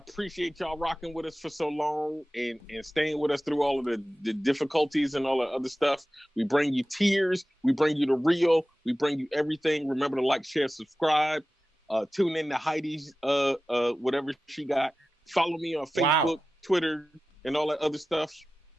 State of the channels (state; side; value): normal; both; correlation 0.95